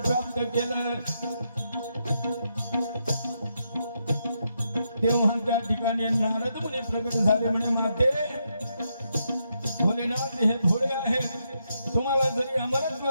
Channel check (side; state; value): both; inverted; correlation -0.81